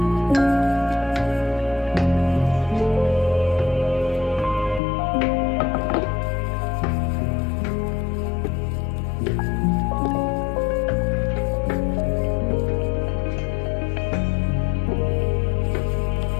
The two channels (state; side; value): drops out; right; at 4.8 s